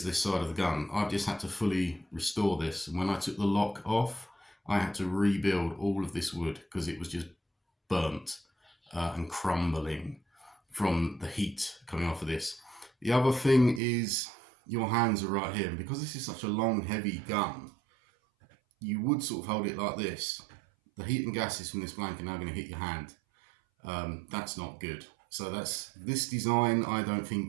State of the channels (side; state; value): left; drops out; at 13.8 s